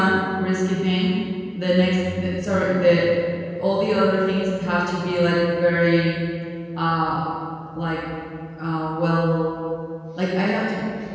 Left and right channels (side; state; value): both; identical; correlation 1.00